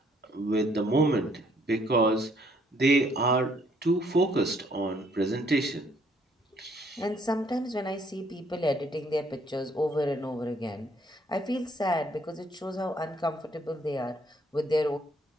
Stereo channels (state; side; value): normal; both; correlation 0.65